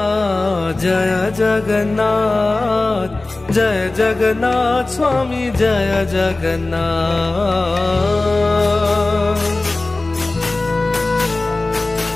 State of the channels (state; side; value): quieter; right; 3.1 dB